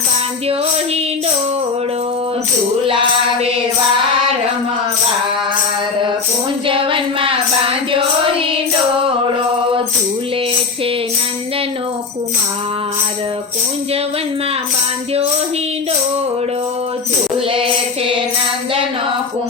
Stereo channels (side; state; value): right; quieter; 4.6 dB